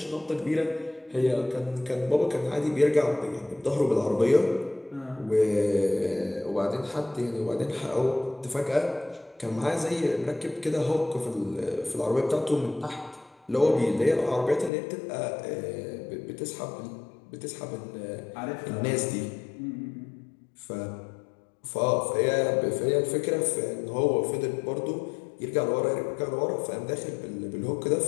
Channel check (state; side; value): drops out; right; at 14.7 s